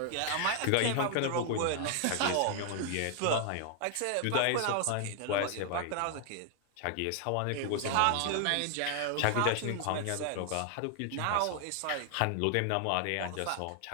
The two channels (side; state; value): both; different; correlation 0.00